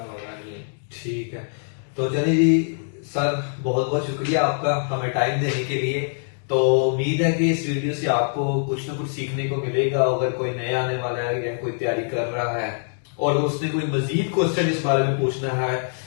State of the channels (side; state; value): right; silent; digital silence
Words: लगा नहीं है। ठीक है। तो चलिए जी सर, बहुत बहुत शुक्रिया आपका हमें टाइम देने के लिए। तो उम्मीद है कि इस वीडियो से आपको कुछ ना कुछ सीखने को मिलेगा। अगर कोई नया आने वाला है या कोई तैयारी कर रहा है और उसने कोई मजीद क्वेश्चन इस बारे में पूछना है